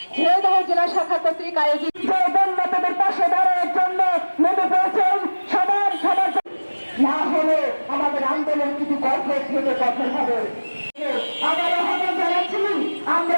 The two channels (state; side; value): inverted; both; correlation -1.00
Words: ঝিনাইদহ জেলা শাখা কর্তৃক আয়োজিত বন্যাদের পাশে দাঁড়ানোর জন্য নেমে পড়েছেন সবার না হলে আমাদের আন্দোলন কিছু কঠোর থেকে কঠোর হবে।